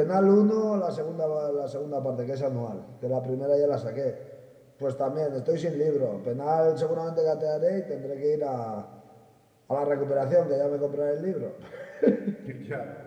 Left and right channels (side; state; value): both; identical; correlation 1.00